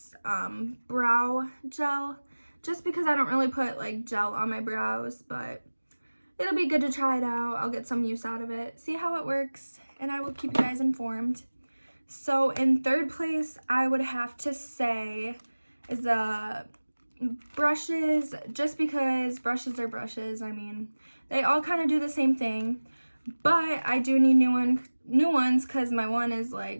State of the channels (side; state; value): both; inverted; correlation -1.00